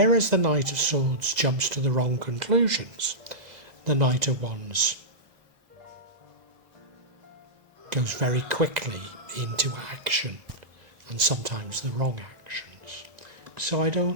the Knight of Swords jumps to the wrong conclusions, the Knight of Wands goes very quickly into action, and sometimes the wrong actions. So I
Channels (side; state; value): left; late; 2.0 ms